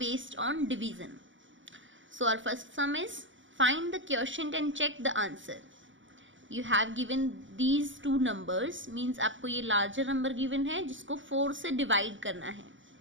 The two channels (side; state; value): left; late; 0.56 ms